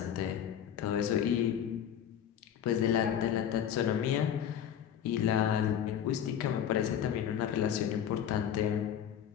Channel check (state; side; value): quieter; right; 9.4 dB